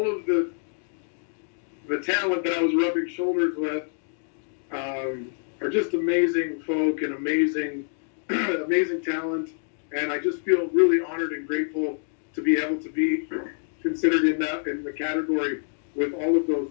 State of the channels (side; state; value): right; silent; digital silence